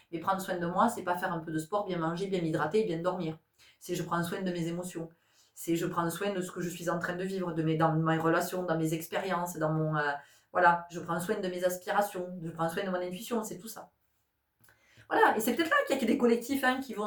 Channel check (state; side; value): identical; both; correlation 1.00